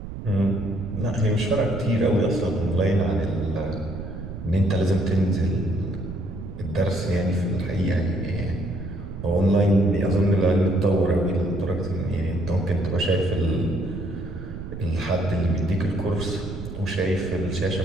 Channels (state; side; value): noise; right; rumble, 10 dB below the sound